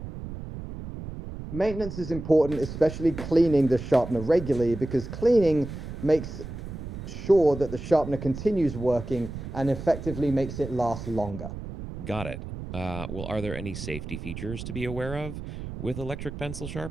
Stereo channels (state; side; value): noise; right; rumble, 9 dB below the sound